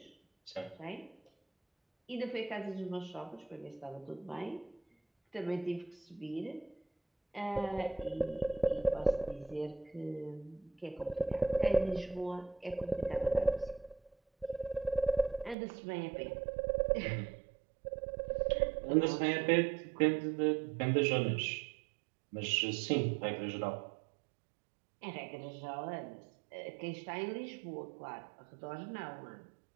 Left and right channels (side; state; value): left; drops out; at 15.6 s